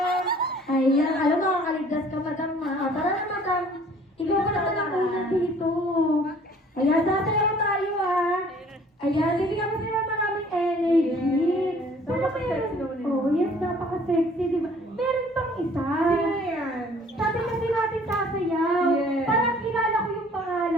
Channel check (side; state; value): both; normal; correlation 0.54